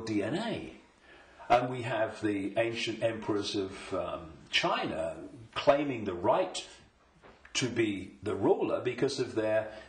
DNA. And we have the ancient emperors of China claiming the right to be the ruler because of their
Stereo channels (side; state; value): both; identical; correlation 1.00